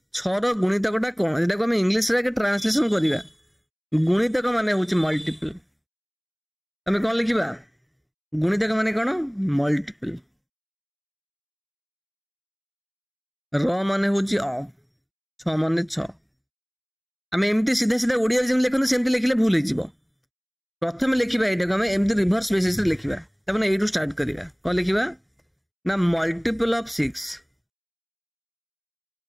6ର ଗୁଣିତକଟା କଣ, ଯେଟାକୁ ଆମେ ଇଂଲିଶରେ ଆଗେ ଟ୍ରାନ୍ସଲେସନ କରିବା। ଗୁଣିତକ ମାନେ ହଉଛି ମଲ୍ଟିପଲ। ଆମେ କଣ ଲେଖିବା? ଗୁଣିତକ ମାନେ କଣ? ମଲ୍ଟିପଲ। ର ମାନେ ହଉଛି ଅଫ, 6 ମାନେ 6। ଆମେ ଏମିତି ସିଧା ସିଧା ଓଡ଼ିଆରେ ଯେମିତି ଲେଖନ୍ତୁ ସେମିତି ଲେଖିଲେ ଭୁଲ ହେଇଯିବ। ପ୍ରଥମେ ଲେଖିବା ଏଇଟାକୁ ଆମେ ଏମିତି ରିଭର୍ସ ବେସିସରେ ଲେଖିବା। ତାମାନେ ଏଇଠୁ ଷ୍ଟାର୍ଟ କରିବା। କଣ ଲେଖିବା ନା ମଲ୍ଟିପଲ ଅଫ 6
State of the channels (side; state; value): both; identical; correlation 1.00